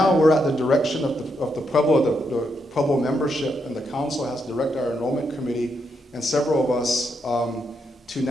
we're at the direction of the Pueblo, the Pueblo membership, and the council has directed our enrollment committee and several of us to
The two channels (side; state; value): both; normal; correlation 0.80